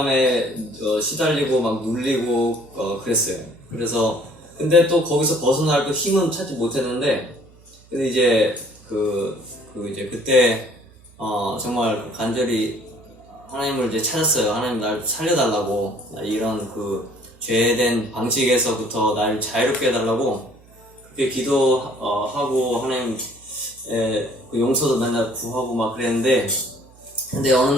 시달리고 막 눌리고 그랬어요. 그래서 근데 또 거기서 벗어날 또 힘은 찾지 못했는데, 근데 이제 그때 정말 간절히 하나님을 이제 찾았어요. 하나님 날 살려달라고, 이런 그 죄된 방식에서부터 날 자유롭게 해달라고 그렇게 기도하고 하나님의 그 용서도 맨날 구하고 막 그랬는데, 근데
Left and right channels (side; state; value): right; noise; hum, 26 dB below the sound